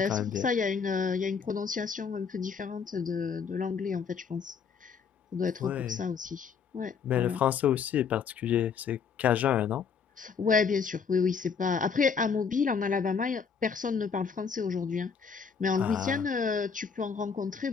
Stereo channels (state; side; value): quieter; right; 6.1 dB